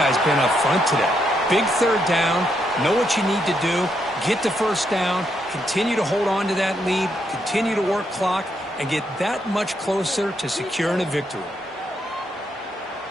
been up front today. Big third down, know what you need to do, get the first down, continue to hold on to that lead, continue to work clock, and get that much closer to securing a victory.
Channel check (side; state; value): both; normal; correlation 0.78